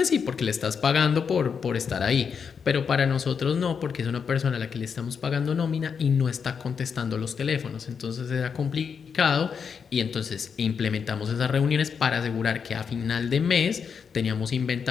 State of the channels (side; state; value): right; quieter; 6.4 dB